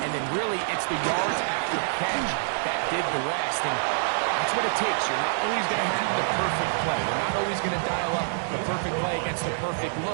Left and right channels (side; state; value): left; silent; digital silence